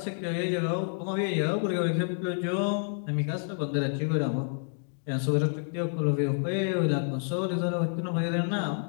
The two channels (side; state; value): right; silent; 59 dB below the other